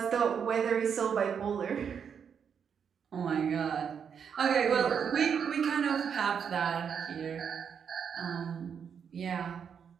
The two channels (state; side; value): quieter; left; 7.2 dB